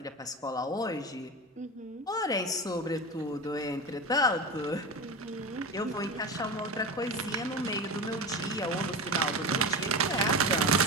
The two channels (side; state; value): both; normal; correlation 0.25